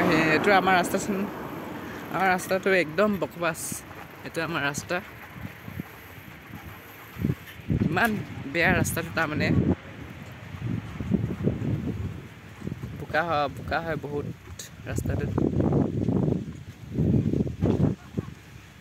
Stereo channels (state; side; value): identical; both; correlation 1.00